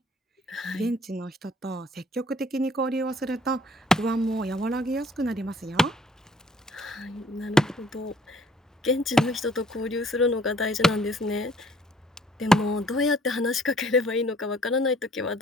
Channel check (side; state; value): both; normal; correlation 0.60